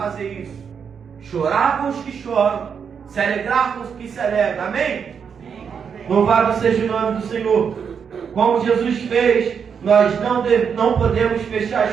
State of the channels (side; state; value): left; quieter; 6.8 dB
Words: isso. Chorar com os que choram, se alegrar com os que se alegram. Amém? Louvado seja o nome do Senhor. Como Jesus fez, nós não podemos fechar